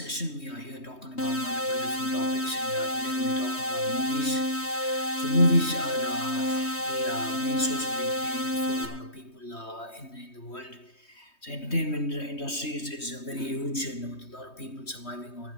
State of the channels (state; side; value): late; right; 3.2 ms